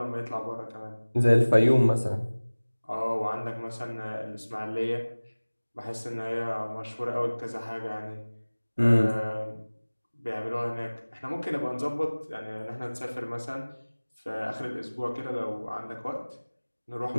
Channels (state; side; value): inverted; both; correlation -1.00